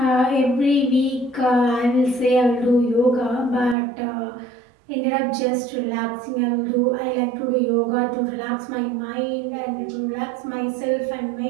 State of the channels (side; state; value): left; drops out; at 3.8 s